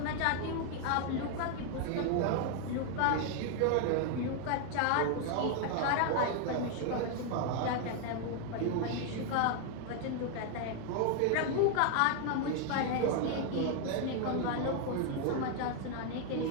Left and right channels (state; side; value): different; both; correlation 0.00